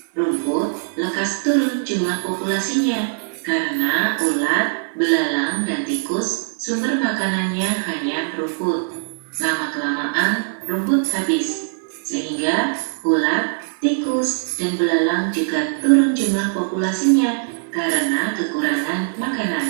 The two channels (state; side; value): silent; left; 56 dB below the other